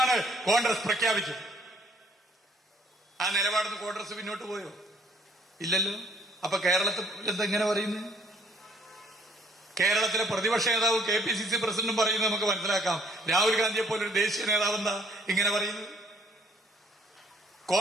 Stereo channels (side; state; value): both; normal; correlation 0.62